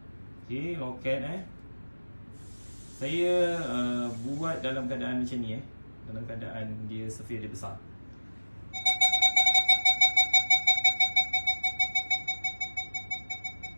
Okey, loket saya buat dalam keadaan macam ni dalam keadaan dia surface dia besar.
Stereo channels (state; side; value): inverted; both; correlation -1.00